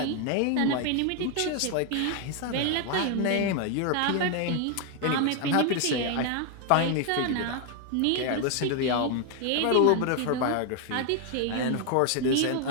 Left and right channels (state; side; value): different; both; correlation 0.01